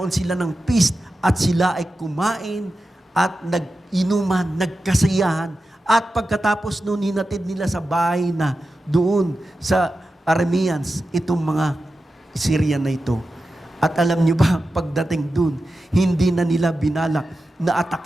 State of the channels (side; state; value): both; normal; correlation 0.92